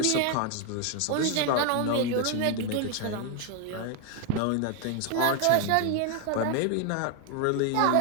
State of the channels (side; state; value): both; different; correlation 0.01